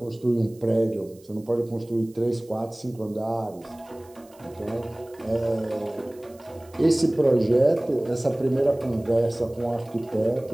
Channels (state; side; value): noise; right; hiss, 28 dB below the sound